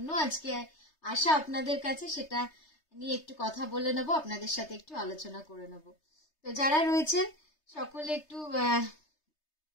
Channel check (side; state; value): right; late; 3.3 ms